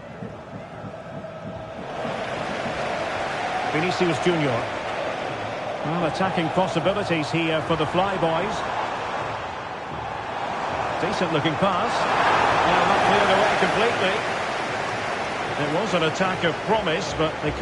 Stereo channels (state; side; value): identical; both; correlation 1.00